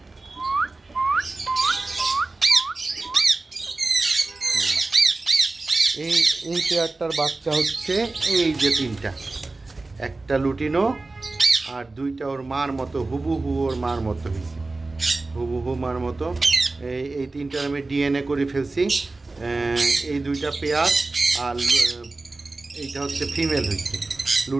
এই পেয়ারটার বাচ্চা হচ্ছে এই যে তিনটা, একটা লুটিনো আর দুইটা ওর মার মতো, হুবহু ওর মার মতো হয়েছে, হুবহু মার মতো। এই তিনটার আমি ডিএনএ করে ফেলছি। এই দুইটা পেয়ার, আর এইটা হচ্ছে ফিমেল হয়েছে,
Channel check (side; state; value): left; quieter; 3.3 dB